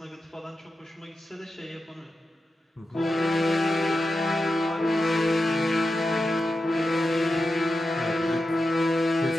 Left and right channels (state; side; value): normal; both; correlation 0.90